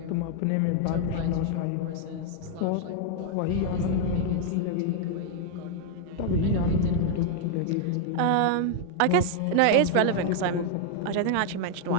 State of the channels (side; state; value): both; different; correlation 0.00